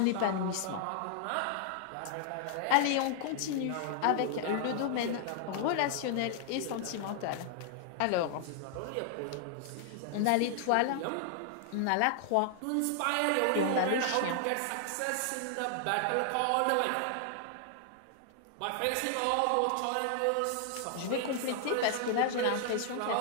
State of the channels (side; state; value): both; different; correlation 0.00